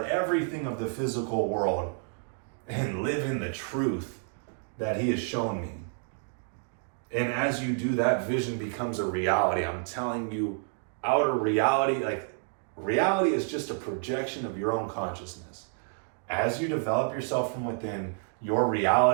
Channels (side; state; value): left; silent; 58 dB below the other